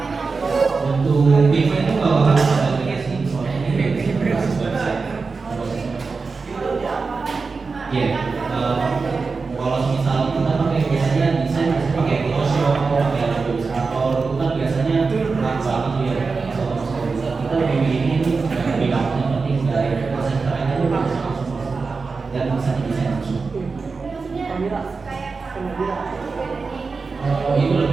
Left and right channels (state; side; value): quieter; left; 4.5 dB